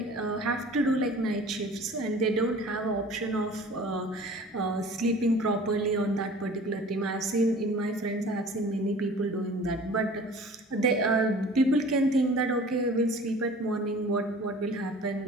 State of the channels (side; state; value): both; normal; correlation 0.45